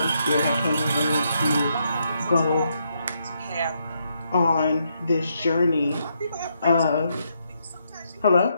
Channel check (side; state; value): both; inverted; correlation -0.78